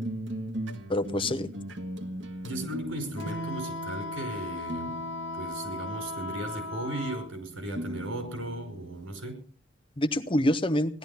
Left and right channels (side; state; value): both; normal; correlation 0.55